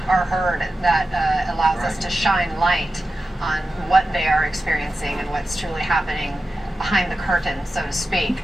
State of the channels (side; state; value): both; normal; correlation 0.93